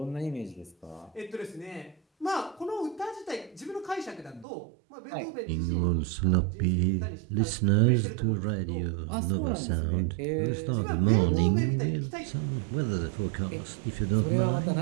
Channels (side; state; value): left; drops out; at 4.5 s